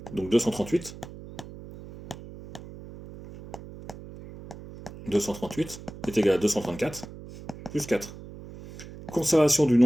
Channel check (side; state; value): right; noise; hum, 15 dB below the sound